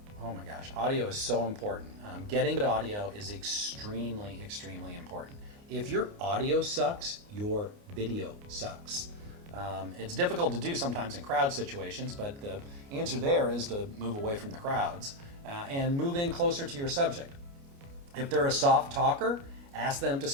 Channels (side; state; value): left; late; 29 ms